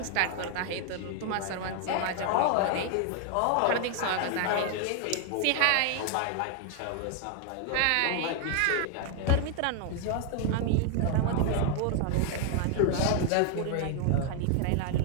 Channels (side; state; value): both; different; correlation 0.00